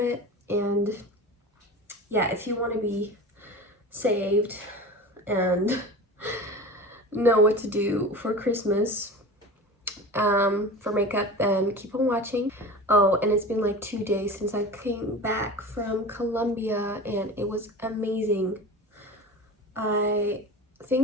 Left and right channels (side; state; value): both; normal; correlation 0.33